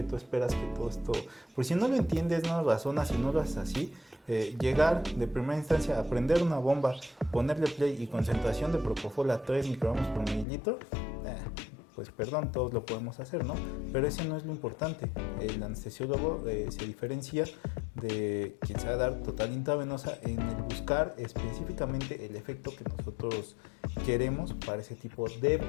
tú esperas que todo esto... Por si no lo entiendes, no lo razonas y no lo haces así, llegar de primera instancia a prender una bomba, ponerle play y concentración de propofol a 3 microgramos por mililitro, pues perdón, todos lo podemos hacer, ¿no? Pero ese no es lo importante. El anestesiólogo se diferencia de quien sabe dar total intravenosa en el buscar específicamente el efecto que nosotros queremos para ese tipo de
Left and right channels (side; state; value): right; drops out; at 10.5 s